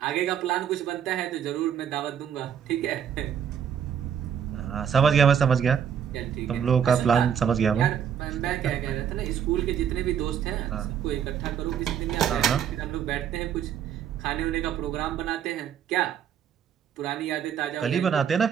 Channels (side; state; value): left; quieter; 8.5 dB